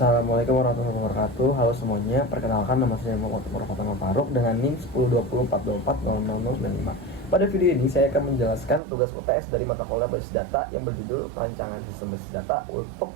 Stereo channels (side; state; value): left; drops out; at 8.8 s